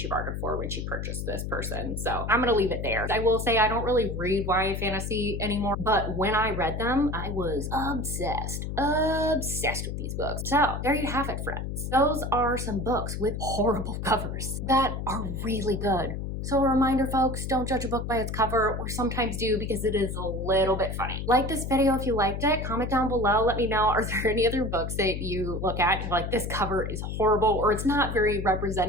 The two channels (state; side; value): noise; left; hum, 4 dB below the sound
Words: bargained for when she purchased this person. So I'm gonna leave it there. I will say I don't really read YA fantasy anymore, but when I read them, I was obsessed with these books. So there you have it, friends. Those are some books with horrible covers that are really good. So a reminder, folks, don't judge a book by its cover, or sometimes do because it is a little bit funny. Like this video if you liked it, comment down below, let me know, are there any other books that you look at and like, this cover is horrible, or it's not very